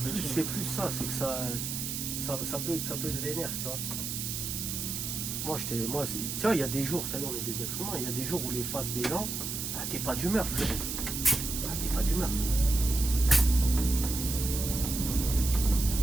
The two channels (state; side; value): noise; right; hiss, 4 dB below the sound